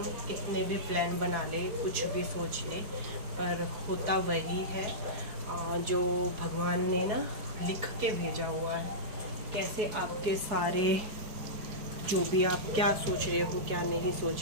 कितने भी प्लान बना ले, कुछ भी सोच ले, पर होता वही है जो भगवान ने ना लिख के भेजा हुआ है। कैसे आपके सारे जो भी आप क्या सोच रहे हो क्या नहीं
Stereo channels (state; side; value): late; left; 4.7 ms